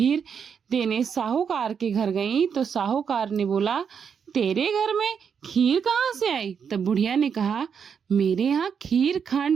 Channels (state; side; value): quieter; left; 7.0 dB